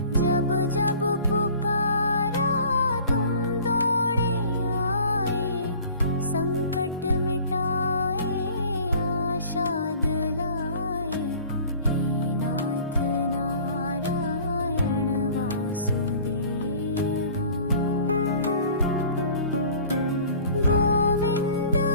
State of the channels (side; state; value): both; inverted; correlation -0.48